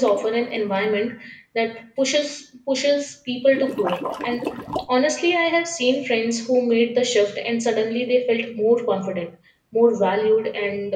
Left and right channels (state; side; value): identical; both; correlation 1.00